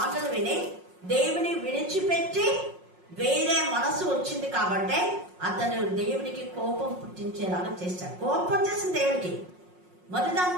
విని దేవుని విడిచిపెట్టి వేరే మనసు వచ్చింది కాబట్టి అతను దేవునికి కోపం పుట్టించేలాగా చేశాడు. కోపం చేసిన దేవుడికి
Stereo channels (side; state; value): left; late; 5.5 ms